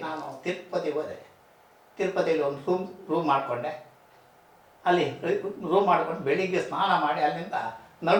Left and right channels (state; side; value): identical; both; correlation 1.00